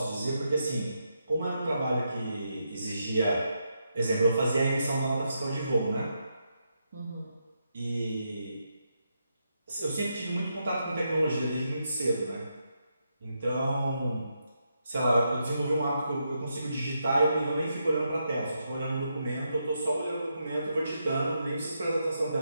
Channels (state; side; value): inverted; both; correlation -0.83